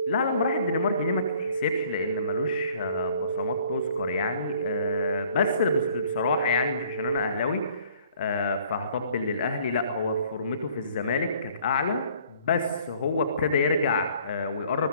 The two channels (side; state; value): both; inverted; correlation -0.57